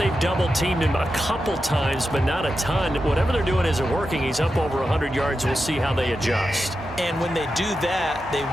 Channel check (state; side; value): normal; both; correlation 0.89